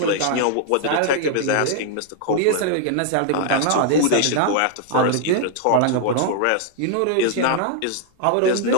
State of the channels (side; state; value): both; different; correlation 0.00